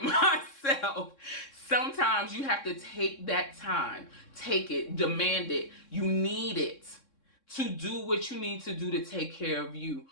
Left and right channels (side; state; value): right; late; 3.6 ms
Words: myself. Sometimes you have to take that time. Take it. Demand it. You need it to do what you need to do to take care of you.